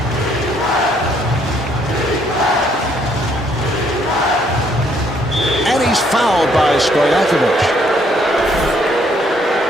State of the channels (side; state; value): both; normal; correlation 0.67